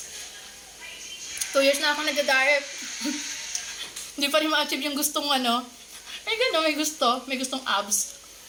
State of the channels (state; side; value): identical; both; correlation 1.00